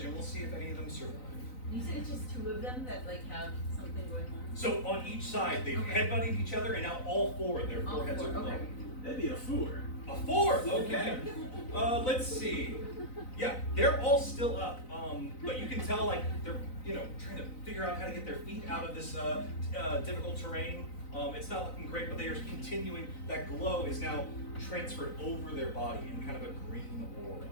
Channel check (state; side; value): late; right; 4.0 ms